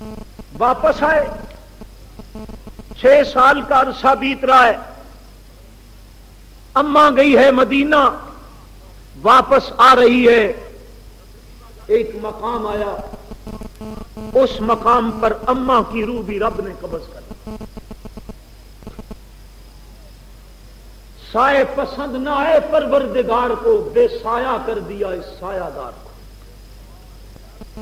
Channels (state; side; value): identical; both; correlation 1.00